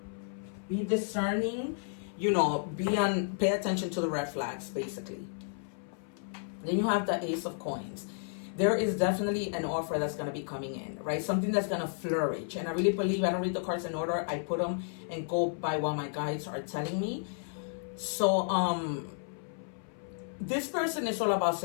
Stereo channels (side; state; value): right; silent; 56 dB below the other